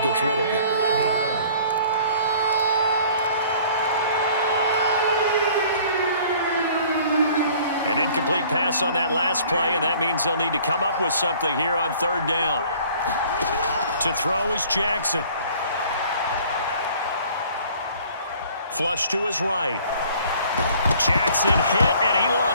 rid of it. An incomplete pass on that last play, and that means they'll need to come up with something here on third down. To throw is Jackson. Flush to his right. Jackson hit, and he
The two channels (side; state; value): both; inverted; correlation -0.53